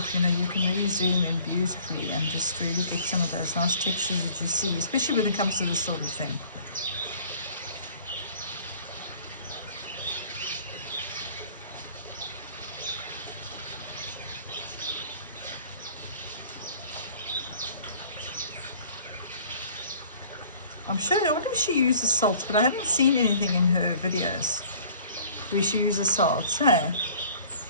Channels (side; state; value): both; inverted; correlation -0.52